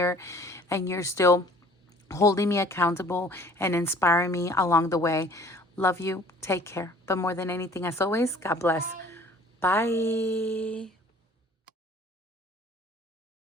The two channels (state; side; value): normal; both; correlation 0.52